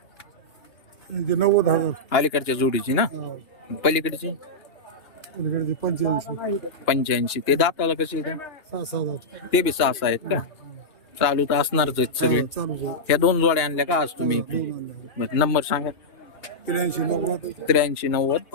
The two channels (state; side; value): late; right; 2.9 ms